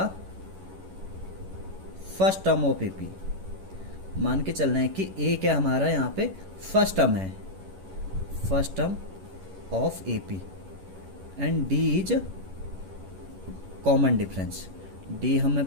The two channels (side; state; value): left; late; 11 ms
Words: first term of AP. मान के चलना है कि ए क्या हमारा यहाँ पे फर्स्ट टर्म है, first term of AP, and D is common difference. D हमें